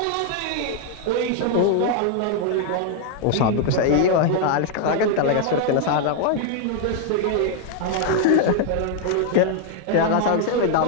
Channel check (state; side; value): different; both; correlation 0.00